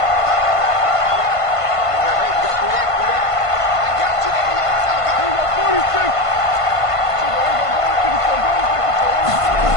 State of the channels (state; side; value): late; right; 1.5 ms